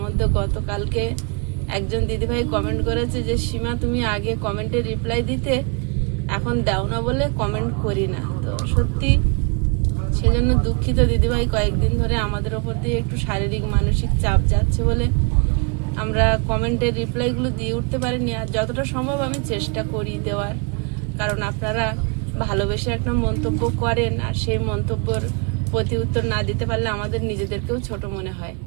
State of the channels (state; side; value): quieter; left; 34.8 dB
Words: মধ্যে গতকালকে একজন দিদিভাই কমেন্ট করেছে যে সীমা তুমি আগে কমেন্টে রিপ্লাই দিতে, এখন দাও না বলে কমেন্ট করি না। তো সত্যি সেজন্য দুঃখিত দিদিভাই, কয়েকদিন ধরে আমাদের ওপর দিয়ে একটু শারীরিক মানসিক চাপ যাচ্ছে বলে আমরা কমেন্টের রিপ্লাইগুলো দিয়ে উঠতে পারিনি। আর যতটা সম্ভব আমি চেষ্টা করি দেওয়ার, কারণ আপনারা ভালোবেসে একটা মন্তব্য করেন আর সেই মন্তব্যর প্রতি উত্তর না দিতে পারলে আমাদের নিজেদেরকেও ছোট মনে হয়।